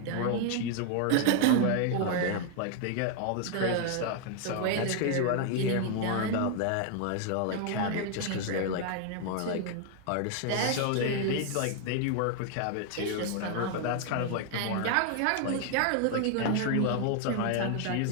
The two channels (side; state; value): both; different; correlation 0.00